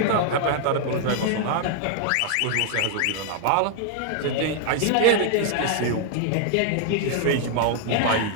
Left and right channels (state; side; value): different; both; correlation 0.00